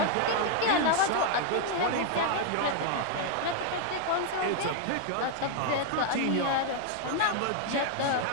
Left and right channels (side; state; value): both; different; correlation 0.00